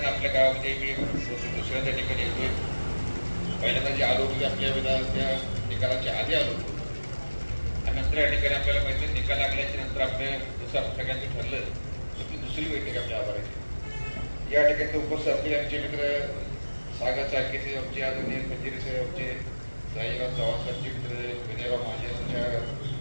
आपल्या गावामध्ये मी दुसऱ्या ठिकाणी येतोय. पहिल्यांदा जे आलो होतो आपल्या विधानच्या निकालाच्या आधी आलो होतो आणि नंतर या ठिकाणी आपल्याला माहिती निकाल लागल्याच्या नंतर आपल्या जसं सगळ्यांनी ठरलं तर ती दुसरी बैठक आपल्या आभाराची. या ठिकाणी उपस्थित असलेले आमचे मित्र सागर चाळके साहेब आमचे, आदरणीय खंजिरे साहेब आमचे, साईराव चव्हाण साहेबचे मित्र, विनयराव माझे आमच्या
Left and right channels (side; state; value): both; inverted; correlation -1.00